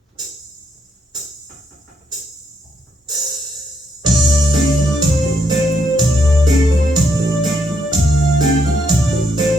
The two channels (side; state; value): both; normal; correlation 0.75